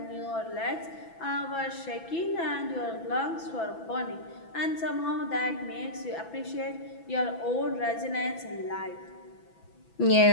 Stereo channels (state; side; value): late; right; 6.0 ms